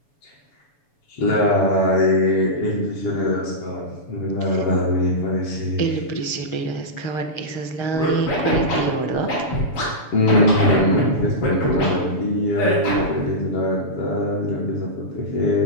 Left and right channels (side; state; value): right; late; 7.0 ms